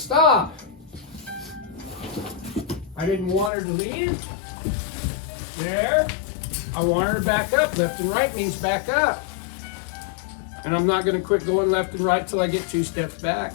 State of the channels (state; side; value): drops out; right; at 3.5 s